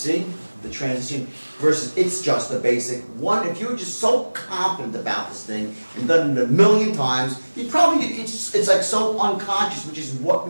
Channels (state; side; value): inverted; both; correlation -1.00